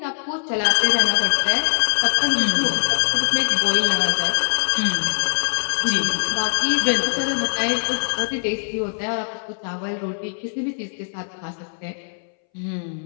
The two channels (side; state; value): right; silent; 63 dB below the other